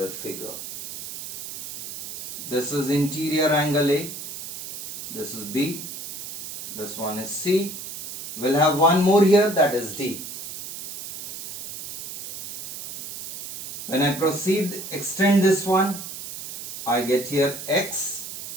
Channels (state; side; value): noise; right; hiss, 8 dB below the sound